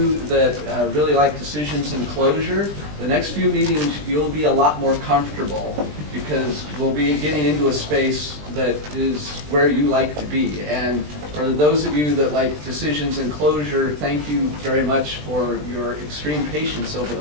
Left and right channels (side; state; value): left; late; 20 ms